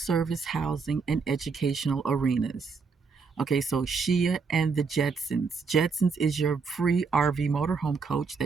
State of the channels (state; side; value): quieter; left; 5.0 dB